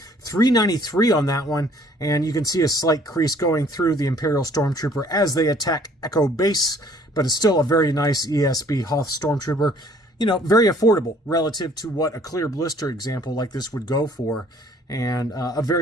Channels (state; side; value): normal; both; correlation 0.58